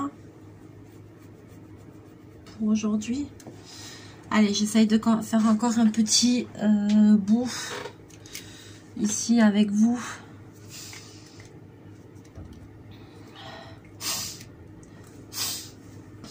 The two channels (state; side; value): identical; both; correlation 1.00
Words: pour aujourd'hui. Allez, j'essaye de faire encore un petit bout ici avec vous.